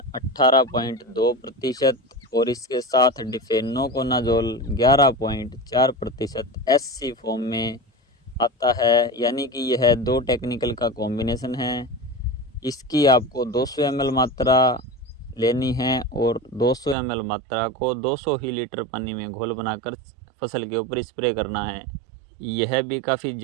18.2% और इसके साथ डिफेनोकोनाजोल 11.4% SC फॉर्म में आता है, यानी कि यह 2 टेक्निकल का कॉम्बिनेशन है। इसकी आपको 200 ml मात्रा लेनी है और 200 ml मात्रा को 200 ही लीटर पानी में घोल बनाकर फसल के ऊपर स्प्रे करना है। यह भी काफ़ी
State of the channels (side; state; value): left; drops out; at 16.9 s